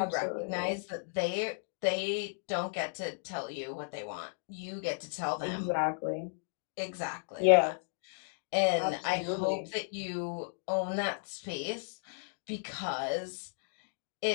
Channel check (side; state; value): right; silent; digital silence